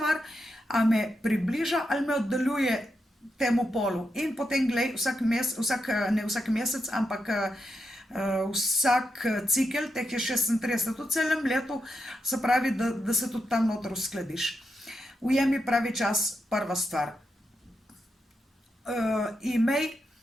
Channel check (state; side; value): normal; both; correlation 0.85